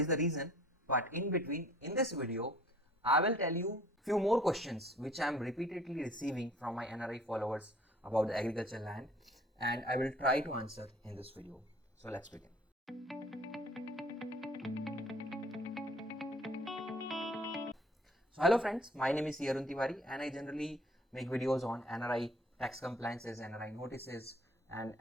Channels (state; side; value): normal; both; correlation 0.53